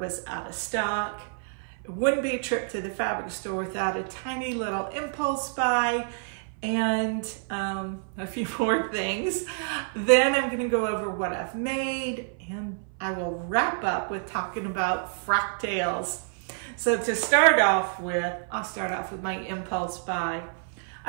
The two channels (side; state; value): left; silent; 56 dB below the other